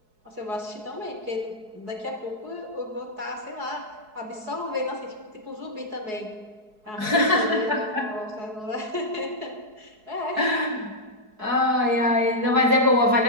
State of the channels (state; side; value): late; left; 4.7 ms